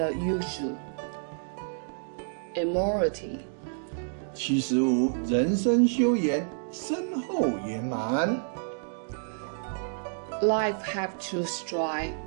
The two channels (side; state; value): left; silent; digital silence